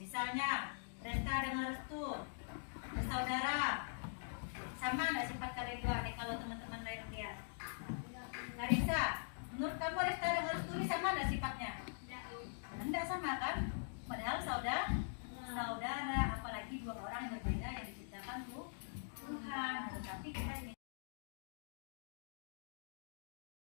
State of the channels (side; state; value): right; silent; digital silence